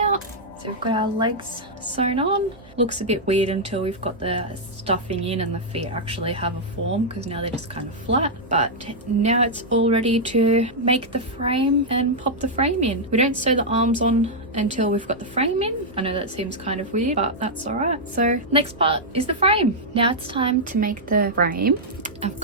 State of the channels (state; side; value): noise; right; hum, 24 dB below the sound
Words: So we've got our legs sewn on. Looks a bit weird until we've got the stuffing in and the feet actually have a form, because now they're just kind of flat. But now it's all ready to make the frame and pop the frame in. We don't sew the arms on until we've got the frame in. I know that seems kind of weird, but that's all right. So next part is the frame. Now it's time to make the frame. I've